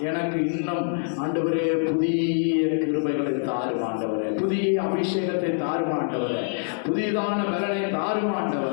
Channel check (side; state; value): right; silent; digital silence